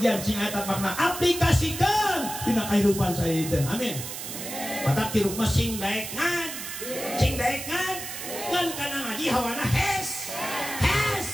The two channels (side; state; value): right; noise; hiss, 8 dB below the sound